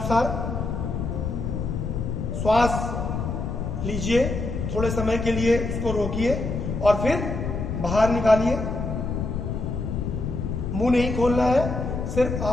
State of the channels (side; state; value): left; noise; rumble, 3 dB below the sound